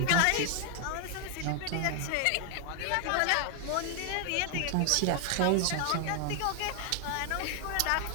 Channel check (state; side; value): different; both; correlation 0.00